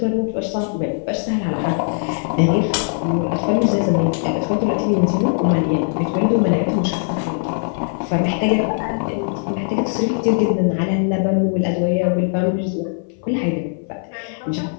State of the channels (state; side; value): silent; right; 58 dB below the other